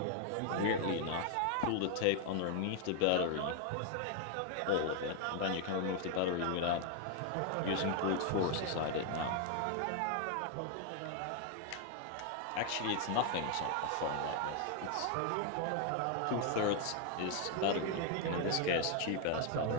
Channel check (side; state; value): both; different; correlation 0.01